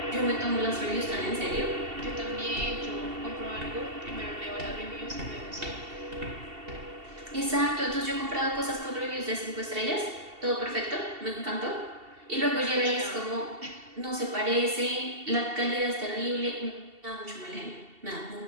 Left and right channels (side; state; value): left; late; 2.7 ms